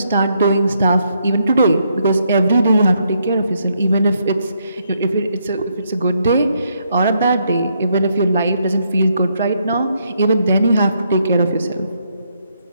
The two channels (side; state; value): both; inverted; correlation -0.75